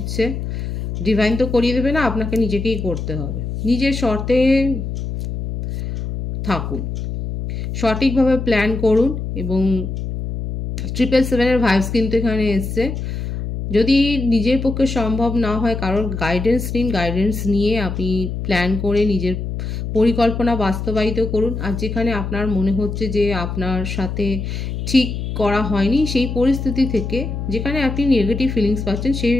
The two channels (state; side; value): noise; left; hum, 5 dB below the sound